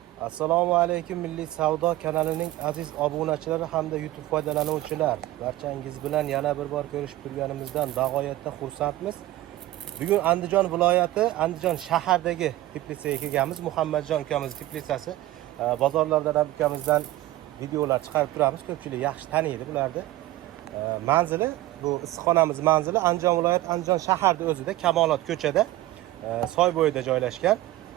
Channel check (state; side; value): quieter; left; 16.1 dB